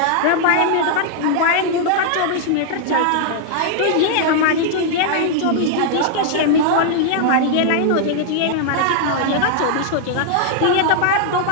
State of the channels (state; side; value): different; both; correlation -0.01